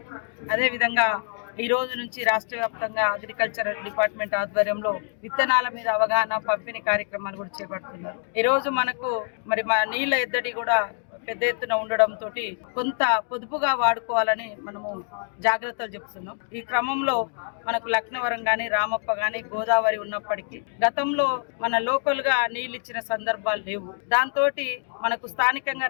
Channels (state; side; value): silent; right; 57 dB below the other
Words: అదేవిధంగా ఈ రోజు నుంచి రాష్ట్ర వ్యాప్తంగా అగ్రికల్చర్ డిపార్ట్మెంట్ ఆధ్వర్యంలో విత్తనాల మీద అవగాహన పంపిణీ కార్యక్రమాలు కూడా చేపడుతున్నారు. ఈ రోజు మనకు మరి మా నీళ్ళ ఎద్దడి కూడా పెద్ద ఎత్తున ఉండడంతో కొంత పొదుపుగా వాడుకోవాలని మనము జాగ్రత్తలు చెప్తున్నాం. ఈ క్రమంలో మనకు లక్నవరం గాని రామప్ప గాని గోదావరి ఉన్నప్పటికీ గతంలో మన లోకల్ గా నీళ్ళు ఇచ్చిన సందర్భాలు లేవు. దాంతో మనకు స్థానికంగా